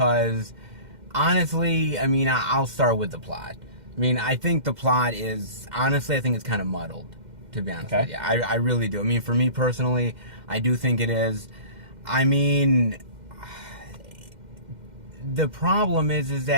honestly, I mean, I'll start with the plot. I mean, I think the plot is, honestly, I think it's kind of muddled, to be honest with you. I really do. I mean, for me personally, I do think it is. I mean, the problem is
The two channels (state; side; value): late; left; 2.1 ms